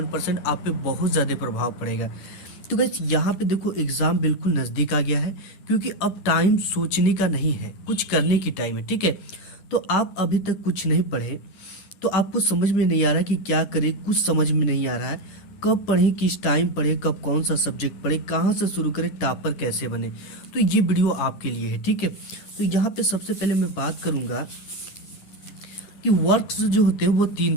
आप पे बहुत ज़्यादा प्रभाव पड़ेगा। तो गाइस, यहाँ पे देखो एग्जाम बिल्कुल नज़दीक आ गया है, क्योंकि अब टाइम सोचने का नहीं है, कुछ करने की टाइम है। ठीक है, तो आप अभी तक कुछ नहीं पढ़े तो आपको समझ में नहीं आ रहा कि क्या करें, कुछ समझ में नहीं आ रहा है। कब पढ़ें, किस टाइम पढ़ें, कब कौन सा सब्जेक्ट पढ़ें, कहाँ से शुरू करें, टॉपर कैसे बने, तो ये वीडियो आपके लिए है। ठीक है, तो यहाँ पे सबसे पहले मैं बात करूँगा कि वर्क्स जो होते हैं वो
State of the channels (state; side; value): late; right; 9.8 ms